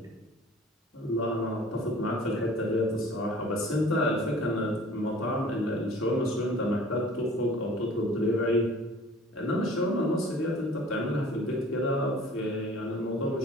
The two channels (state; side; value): normal; both; correlation 0.48